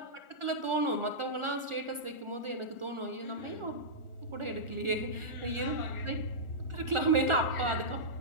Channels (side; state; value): left; late; 1.4 ms